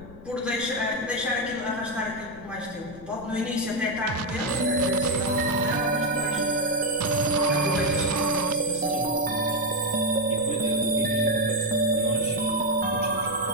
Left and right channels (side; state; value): left; noise; rumble, 19 dB below the sound